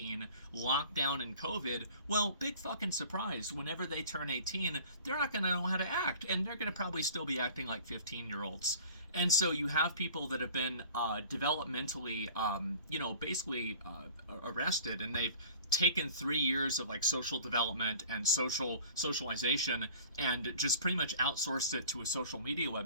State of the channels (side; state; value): both; inverted; correlation -0.46